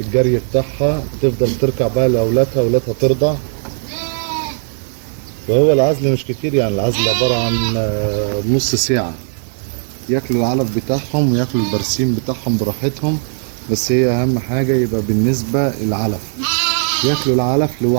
بتاعها تفضل تركع بقى لأولادها، أولادها ترضع. وهو العزل مش كتير، يعني العزل عبارة عن نص ساعة، ياكلوا العلف بتاعهم وياكلوا البرسيم بتاعهم براحتهم. بس هي أهم حاجة يبقى بالنسبة العلف، ياكلوا العلف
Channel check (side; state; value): left; silent; 66 dB below the other